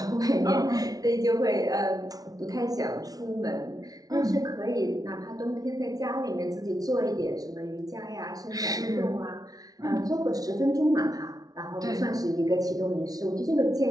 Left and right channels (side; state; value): left; late; 0.18 ms